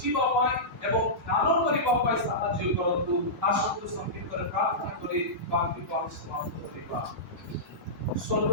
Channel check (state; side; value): normal; both; correlation -0.15